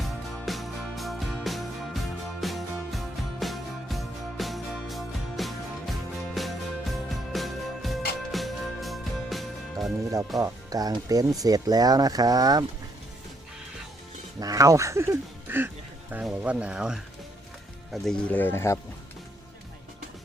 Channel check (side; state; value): both; normal; correlation 0.71